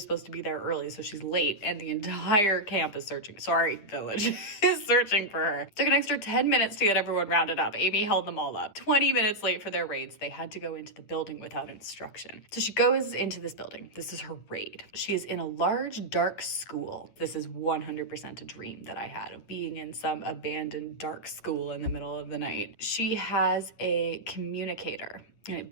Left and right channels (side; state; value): right; late; 9.7 ms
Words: supposed to be there early, so she's late, and the entire camp is village is searching for her. Took an extra 10 minutes to get everyone rounded up. Amy held them all up. 20 minutes late for their raids. They had to go into the building without instruction. So she goes into this building. This is her raid. She is in a large, dark school. This is 100% a dream that I had of being in some abandoned dark school in the middle of the night. She has a communicator. And it